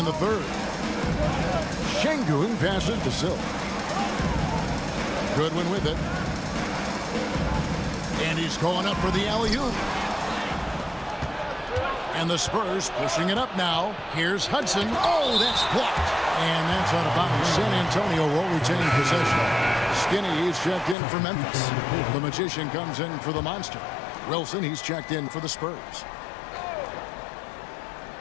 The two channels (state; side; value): drops out; right; at 21.0 s